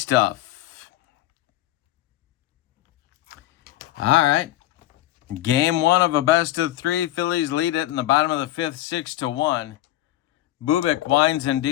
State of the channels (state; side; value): quieter; right; 14.8 dB